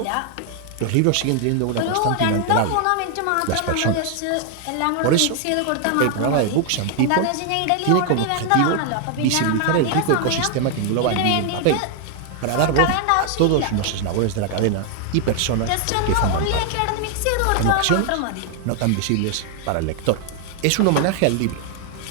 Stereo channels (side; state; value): both; different; correlation 0.00